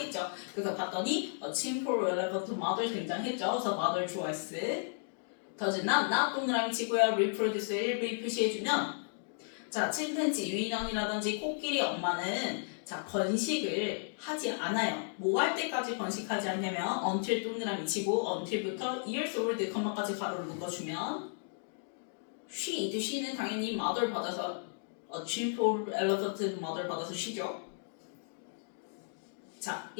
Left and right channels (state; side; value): silent; right; digital silence